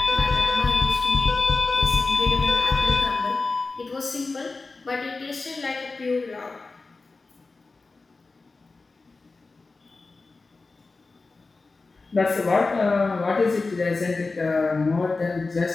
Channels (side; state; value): right; quieter; 3.8 dB